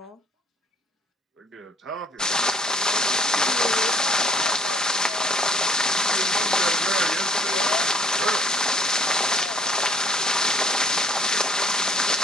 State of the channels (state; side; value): normal; both; correlation 0.59